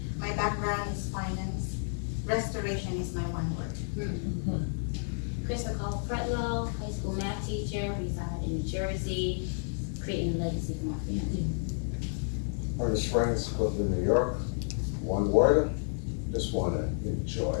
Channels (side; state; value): right; silent; 57 dB below the other